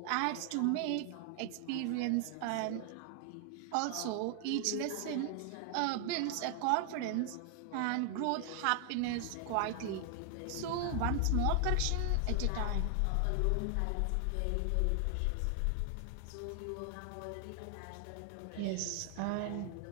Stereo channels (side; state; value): both; different; correlation 0.00